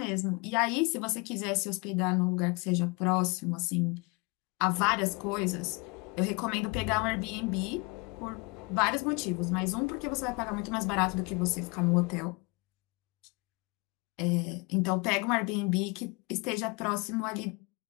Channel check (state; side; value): quieter; right; 28.3 dB